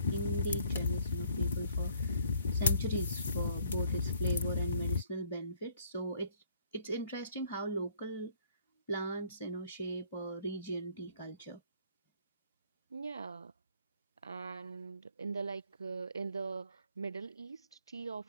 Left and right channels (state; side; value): inverted; both; correlation -0.62